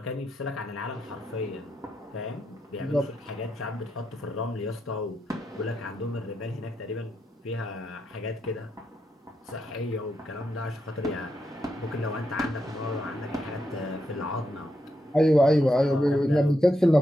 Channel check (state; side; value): normal; both; correlation 0.83